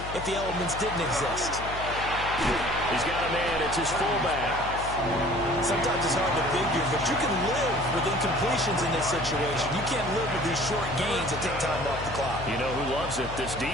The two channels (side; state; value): left; noise; hum, 10 dB below the sound